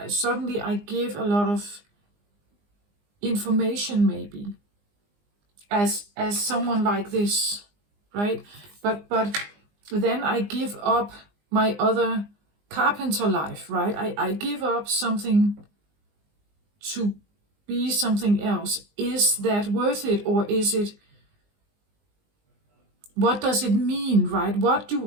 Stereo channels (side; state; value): left; late; 20 ms